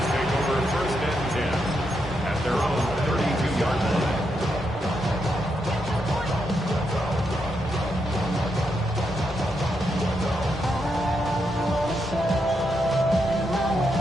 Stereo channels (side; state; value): both; normal; correlation 0.82